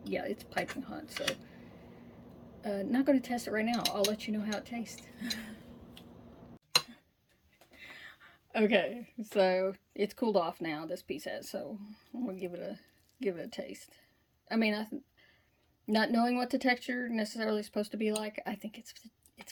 yeah, it's piping hot, so not going to test it right now. I'll let you know how it tastes. Okay, so it's cooled off now, this piece has, so I'm gonna give it a taste. I mean, not knowing what the texture necessarily is supposed to be like, I think it's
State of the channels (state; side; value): identical; both; correlation 1.00